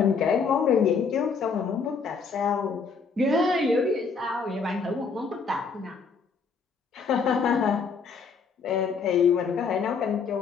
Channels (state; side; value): quieter; right; 5.3 dB